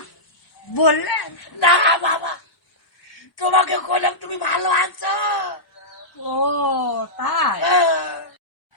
বললেন না বাবা, তোমাকে বললাম তুমি ভালো আছো। ও তাই?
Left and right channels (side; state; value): right; late; 1.0 ms